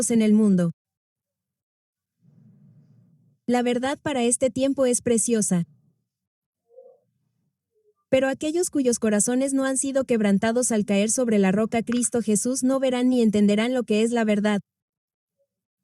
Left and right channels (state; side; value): identical; both; correlation 1.00